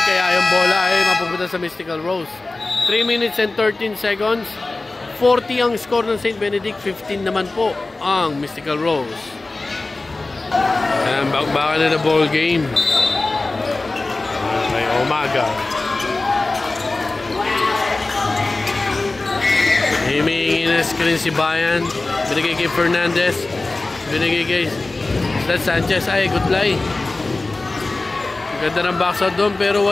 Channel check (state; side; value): quieter; right; 3.2 dB